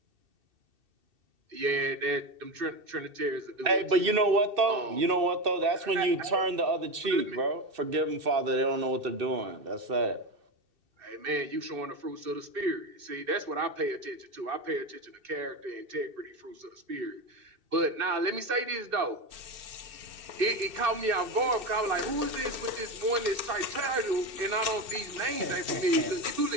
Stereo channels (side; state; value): left; late; 2.7 ms